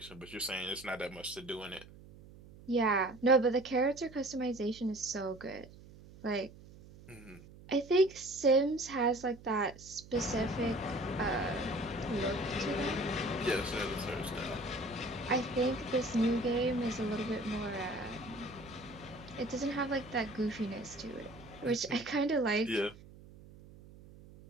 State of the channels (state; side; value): noise; right; hum, 19 dB below the sound